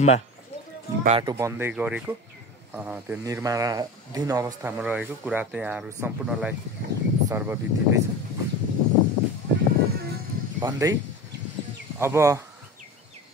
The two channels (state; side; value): normal; both; correlation 0.31